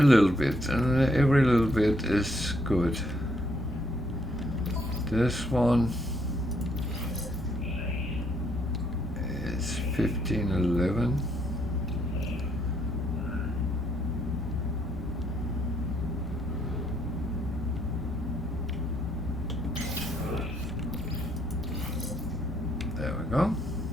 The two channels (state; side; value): normal; both; correlation 0.71